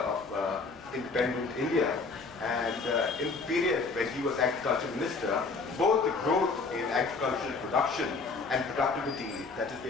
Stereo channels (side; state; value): right; quieter; 4.2 dB